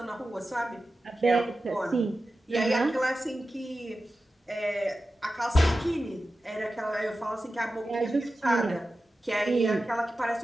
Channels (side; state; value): both; normal; correlation 0.93